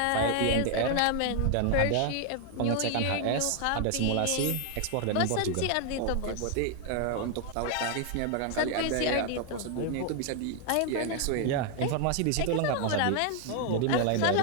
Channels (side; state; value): both; different; correlation 0.00